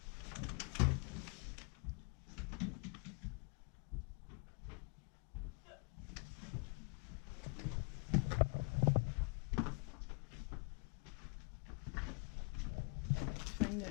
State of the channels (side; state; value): right; quieter; 34.3 dB